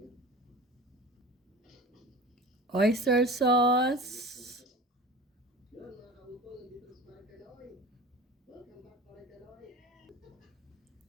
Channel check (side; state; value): both; normal; correlation 0.38